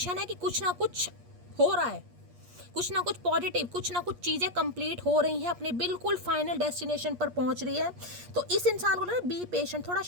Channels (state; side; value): late; left; 8.4 ms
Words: है कि कुछ ना कुछ हो रहा है, कुछ ना कुछ पॉजिटिव, कुछ ना कुछ चीज़ें कंप्लीट हो रही हैं, अपने बिल्कुल फाइनल डेस्टिनेशन पर पहुँच रही है। तो इस इंसान को ना बी पेशेंट, थोड़ा